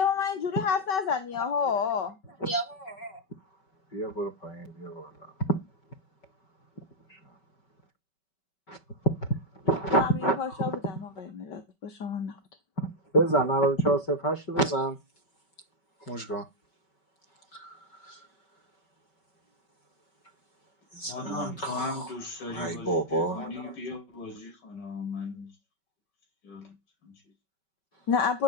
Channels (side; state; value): right; late; 5.2 ms